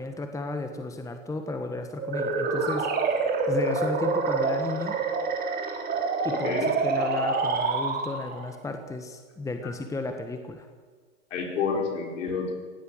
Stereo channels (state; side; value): normal; both; correlation 0.21